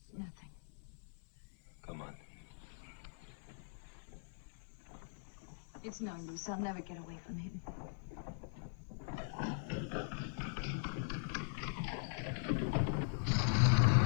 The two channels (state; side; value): silent; right; 50 dB below the other